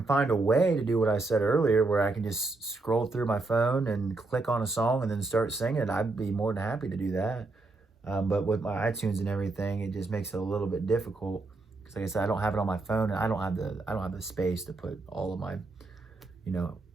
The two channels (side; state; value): left; quieter; 3.4 dB